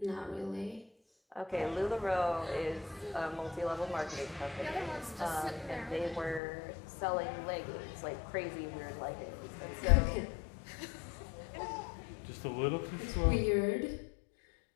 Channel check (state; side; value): drops out; right; at 6.4 s